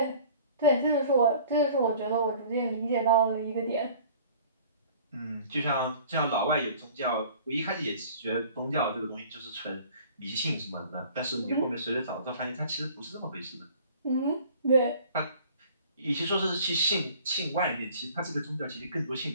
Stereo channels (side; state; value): both; inverted; correlation -0.49